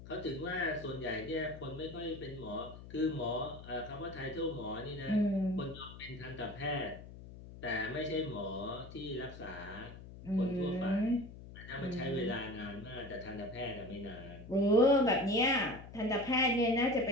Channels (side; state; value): left; noise; hum, 15 dB below the sound